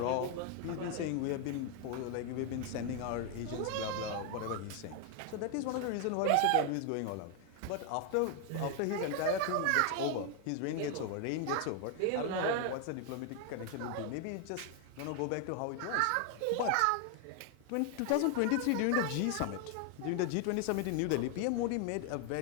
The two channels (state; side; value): different; both; correlation 0.00